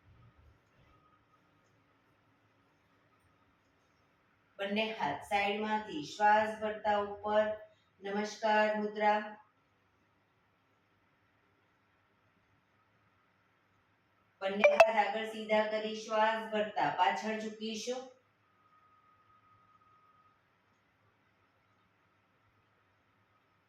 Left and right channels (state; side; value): identical; both; correlation 1.00